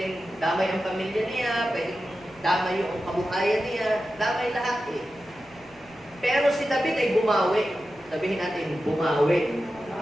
damay ang pamilya niya, pwedeng damay yung kabuhayan niya, damay lahat eh. Pero si David ay bumawi. Sabihin natin, bumawi.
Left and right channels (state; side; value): noise; right; rumble, 27 dB below the sound